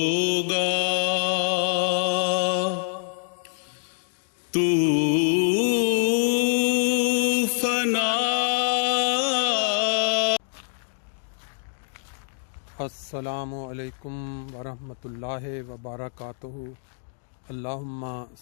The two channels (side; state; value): right; silent; digital silence